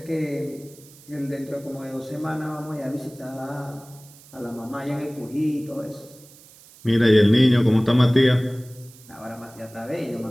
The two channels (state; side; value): noise; right; hiss, 23 dB below the sound